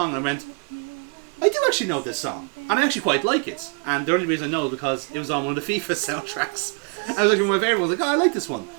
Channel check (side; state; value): left; quieter; 38.0 dB